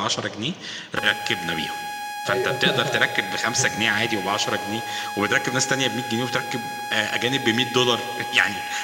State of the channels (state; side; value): identical; both; correlation 1.00